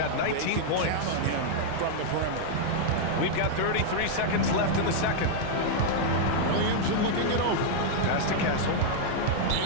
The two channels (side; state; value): both; different; correlation -0.01